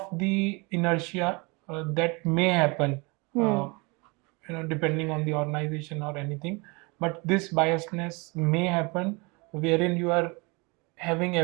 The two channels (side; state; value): left; quieter; 28.2 dB